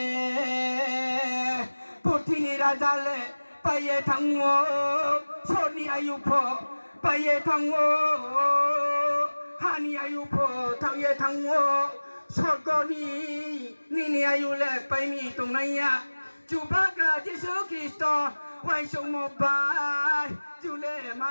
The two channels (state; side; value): inverted; both; correlation -1.00